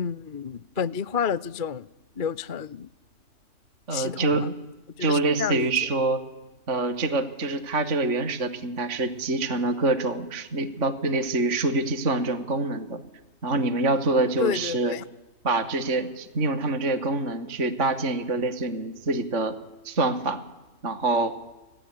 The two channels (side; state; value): left; late; 3.5 ms